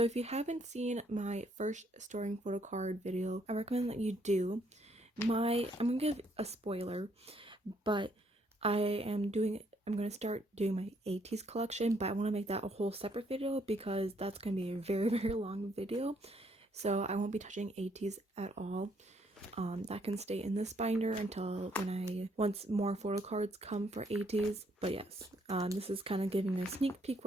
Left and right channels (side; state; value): both; normal; correlation 0.70